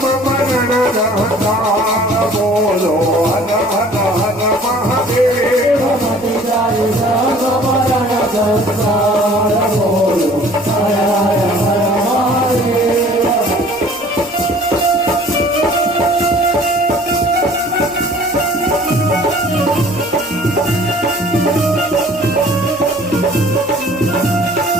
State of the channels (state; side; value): noise; right; rumble, 28 dB below the sound